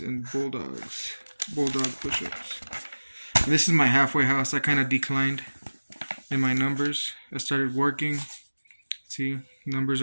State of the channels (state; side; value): inverted; both; correlation -1.00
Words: and bulldog push-ups. And this is my halfway house. I kind of declined in my numbers. I started working. See, numbers